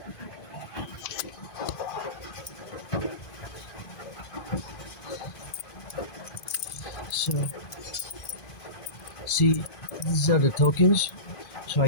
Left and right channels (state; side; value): late; right; 2.5 ms